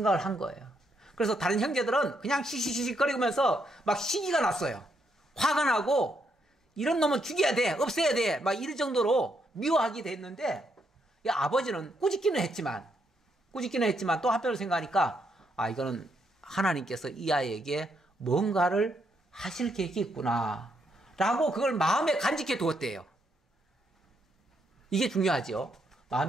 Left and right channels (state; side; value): normal; both; correlation 0.77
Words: 한 거예요. 그래서 다른 형제들은 그냥 시시시거리면서 막 시기가 났어요. 화가 나고 이런 놈은 죽여야 돼, 없애야 돼, 막 이럴 정도로 미워하게 됐는데 이 아버지는 꾸짖기는 했지만 또 한편으로 생각하니까 이거는 하나님께서 이 아이에게 뭔가를 하실 계획이 있구나 라고 그걸 마음에 간직해 두었대요. 이게 중요하죠.